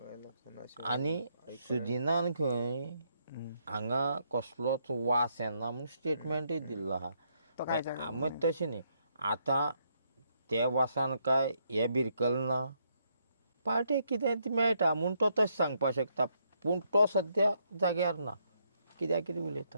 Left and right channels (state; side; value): inverted; both; correlation -0.74